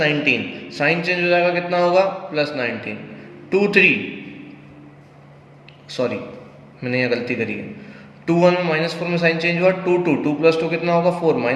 साइन चेंज हो जाएगा कितना होगा +19। 2 3 सॉरी मैंने यहाँ गलती करी है, 2 1 में -4 में साइन चेंज हुआ, 2 2 2 + 2 कितना होगा 4,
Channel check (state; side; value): identical; both; correlation 1.00